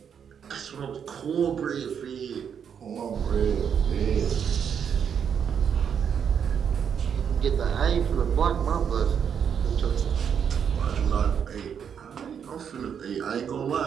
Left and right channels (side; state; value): left; quieter; 7.7 dB